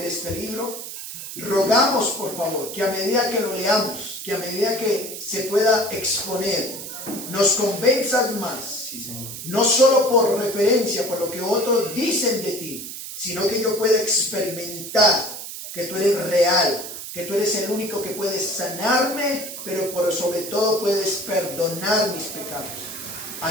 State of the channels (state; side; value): noise; right; hiss, 9 dB below the sound